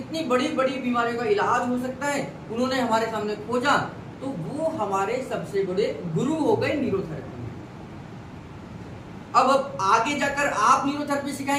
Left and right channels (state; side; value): identical; both; correlation 1.00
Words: बड़ी बड़ी बीमारियों का इलाज हो सकता है, उन्होंने हमारे सामने खोजा, तो वो हमारे सबसे बड़े गुरु हो गए न्यूरोथेरेपी में। अब आगे जाकर आप न्यूरोथेरेपी